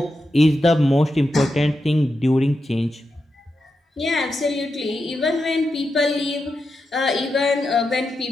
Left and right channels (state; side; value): normal; both; correlation 0.88